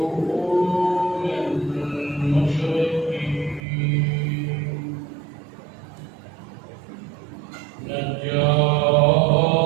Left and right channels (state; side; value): drops out; left; at 3.6 s